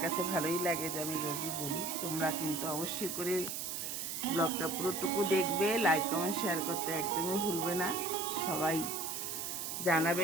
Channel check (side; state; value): right; noise; hiss, 4 dB below the sound